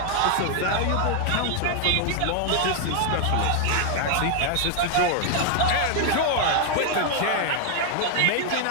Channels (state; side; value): different; both; correlation 0.00